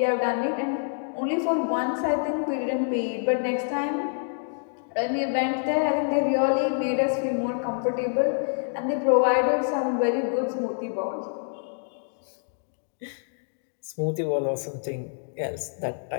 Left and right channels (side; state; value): right; silent; digital silence